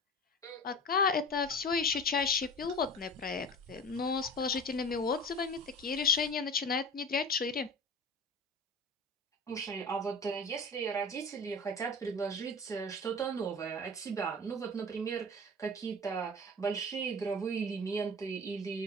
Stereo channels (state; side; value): normal; both; correlation 0.35